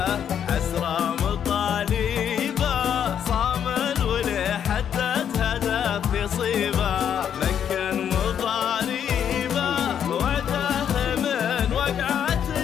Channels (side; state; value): right; quieter; 8.8 dB